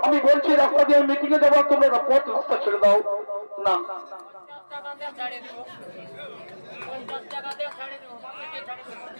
আমি বলছি রাস্তা দিয়ে মিটিং এ যাবো, তোমরা পথ রাস্তা ছেড়ে দাও। না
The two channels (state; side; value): inverted; both; correlation -1.00